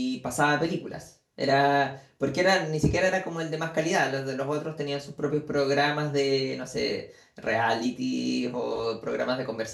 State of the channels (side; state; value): both; identical; correlation 1.00